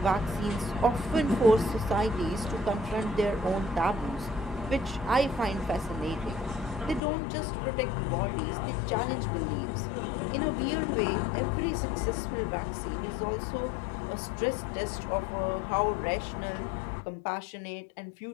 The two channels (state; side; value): drops out; right; at 7.0 s